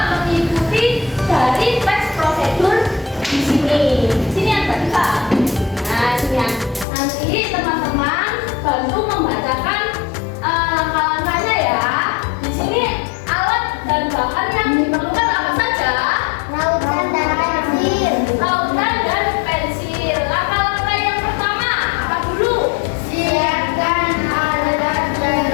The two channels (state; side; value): drops out; right; at 6.9 s